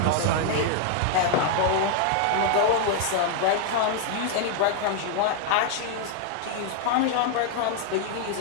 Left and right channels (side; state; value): both; different; correlation 0.00